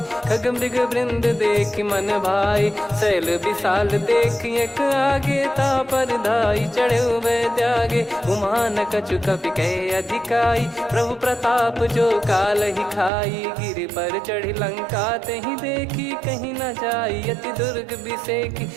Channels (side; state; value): left; drops out; at 13.1 s